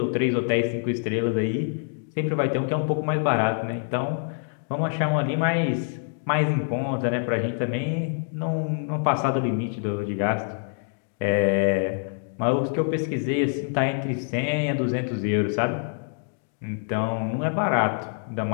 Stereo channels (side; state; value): right; silent; digital silence